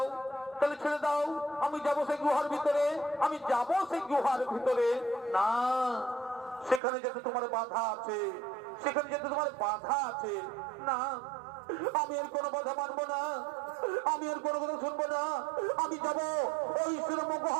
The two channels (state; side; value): drops out; left; at 6.8 s